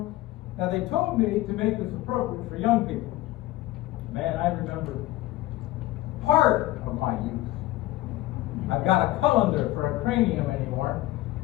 Now they told me to make this appropriate for young people. Man, I remember part of my youth. I've got a colander for a cranium anymore,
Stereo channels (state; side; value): quieter; right; 16.7 dB